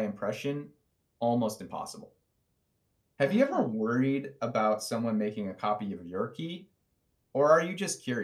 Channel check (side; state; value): both; identical; correlation 1.00